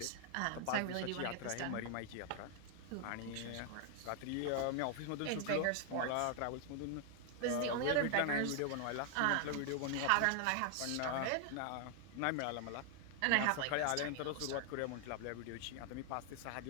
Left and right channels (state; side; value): different; both; correlation 0.00